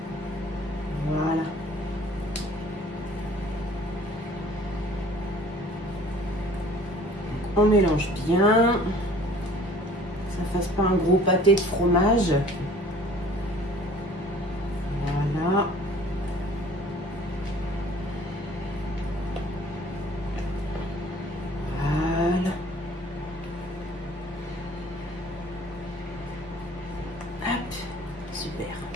Voilà. On mélange bien. Que ça fasse pas un gros pâté de fromage. Voilà. Super.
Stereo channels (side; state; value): both; normal; correlation 0.51